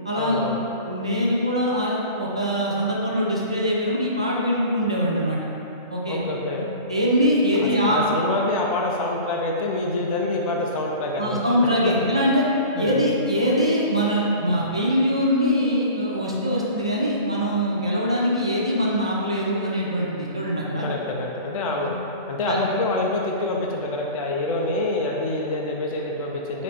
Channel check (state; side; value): inverted; both; correlation -0.40